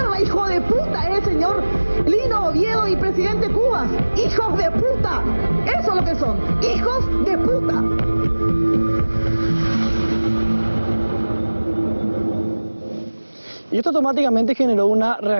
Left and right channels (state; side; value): inverted; both; correlation -1.00